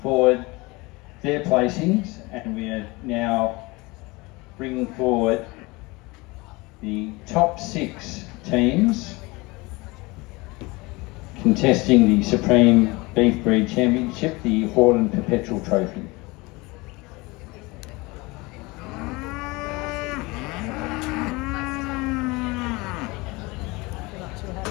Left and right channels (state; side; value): quieter; right; 24.0 dB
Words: their placings, and we are now bringing forward the top 6 teams contesting the Supreme Beef Breed Championship, the Hordern Perpetual Trophy. Not too